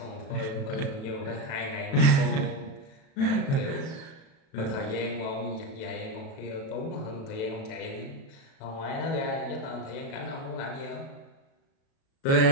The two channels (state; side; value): late; right; 36 ms